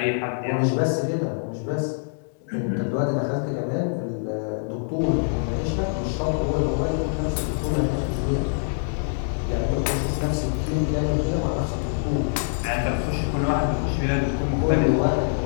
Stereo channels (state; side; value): silent; right; 62 dB below the other